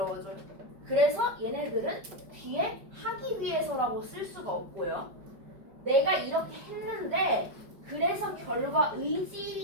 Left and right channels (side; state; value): left; late; 5.2 ms